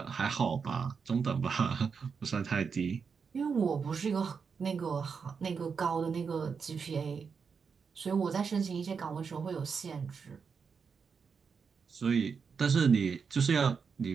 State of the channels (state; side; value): quieter; left; 5.8 dB